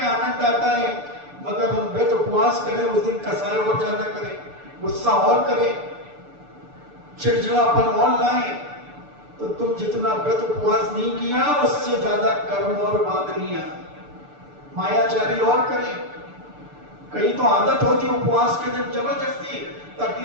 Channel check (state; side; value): late; left; 6.8 ms